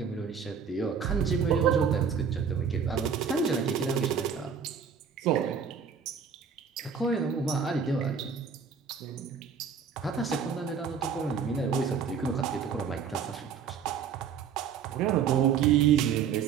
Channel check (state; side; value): quieter; left; 6.6 dB